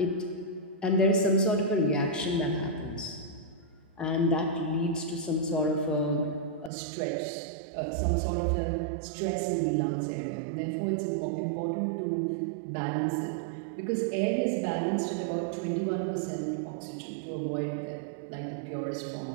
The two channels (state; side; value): drops out; left; at 6.7 s